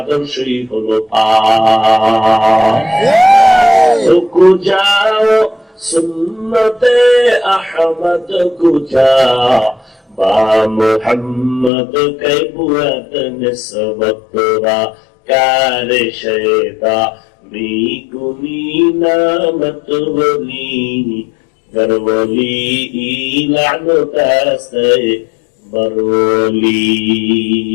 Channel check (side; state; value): right; drops out; at 11.7 s